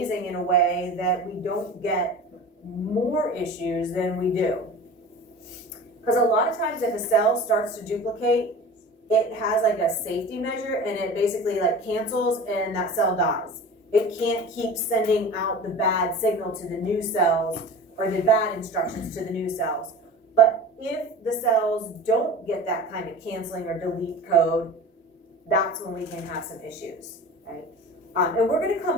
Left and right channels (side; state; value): both; normal; correlation 0.36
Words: in a way that we don't get more issues than we do. Because a lot of times if a cell starts to duplicate, it has like a safety measure and it basically like cancels and that cell dies. It can't keep sending out the bad signal to the new cells or the bad instructions to the new cells. But if the cells don't get that kind of canceling or delete code, that's when we can have some issues, right? And we're going to